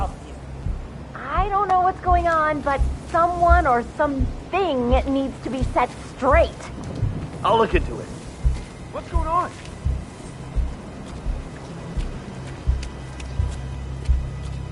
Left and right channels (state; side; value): identical; both; correlation 1.00